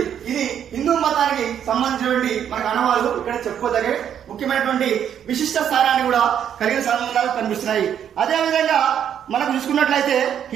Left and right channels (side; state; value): left; quieter; 9.2 dB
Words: ఇది హిందూ మతానికి సంబంధించినటువంటి మనకు ఆనవాళ్ళు ఇక్కడ చెప్పుకోదగే ముఖ్యమైనటువంటి విశిష్ట స్థానాన్ని కూడా కలిగిన సంబంధాలు కనిపిస్తున్నాయి. అదేవిధంగా మనకు చూసుకున్నట్లయితే